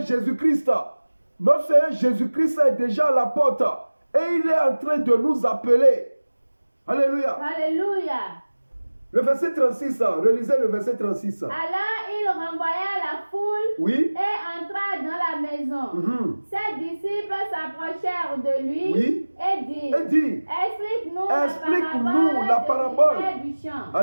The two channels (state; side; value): inverted; both; correlation -1.00